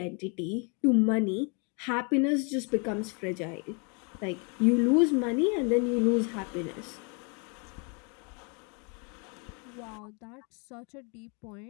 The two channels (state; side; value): quieter; right; 35.0 dB